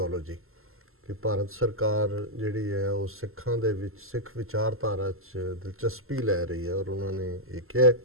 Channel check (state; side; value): late; left; 0.62 ms